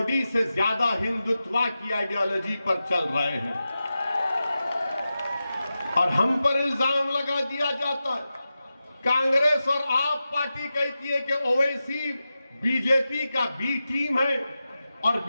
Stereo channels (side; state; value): both; inverted; correlation -0.92